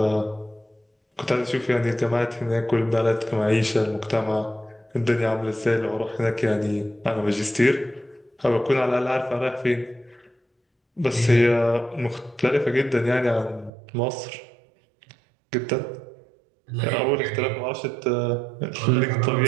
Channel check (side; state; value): left; drops out; at 13.7 s